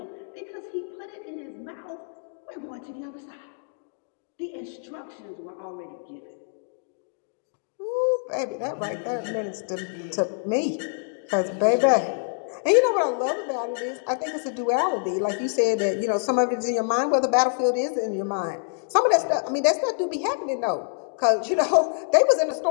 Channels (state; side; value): silent; right; digital silence